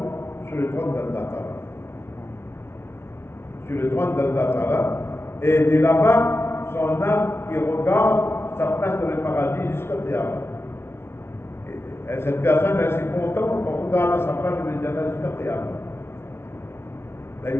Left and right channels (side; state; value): right; late; 0.12 ms